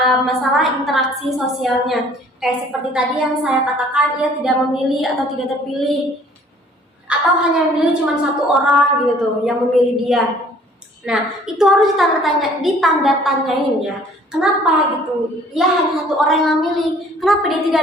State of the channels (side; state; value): both; normal; correlation 0.55